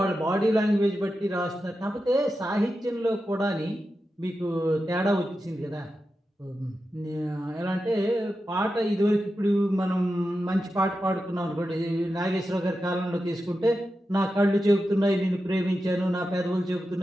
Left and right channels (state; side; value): normal; both; correlation 0.90